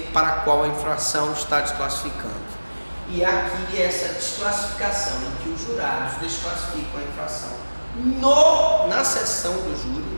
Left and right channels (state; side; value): inverted; both; correlation -1.00